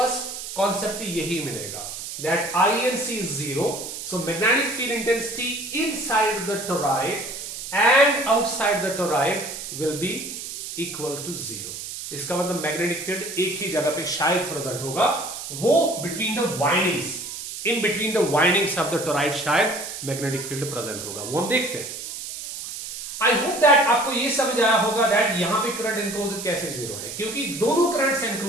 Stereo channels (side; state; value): right; noise; hiss, 8 dB below the sound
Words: कॉन्सेप्ट यही मिलेगा, that INC is 0, so magnetic field intensity inside the toroid and outside the toroid will be equal to 0. इसका मतलब मैग्नेटिक फील्ड एक ही जगह पे शायद प्रेजेंट होगा, वो between the windings, in between the windings of the toroid शायद magnetic field present होगा। वो हम देखते हैं। आई होप दैट आपको ये समझ आया होगा दैट यहां पे करंट एनक्लोज कैसे 0 है, क्योंकि दोनों करंट्स